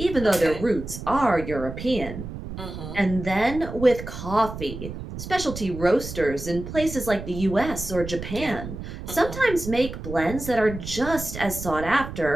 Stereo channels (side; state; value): right; noise; rumble, 9 dB below the sound